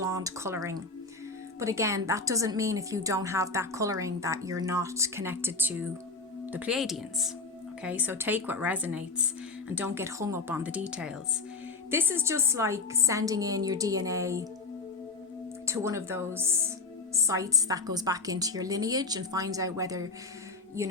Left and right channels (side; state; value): right; quieter; 3.9 dB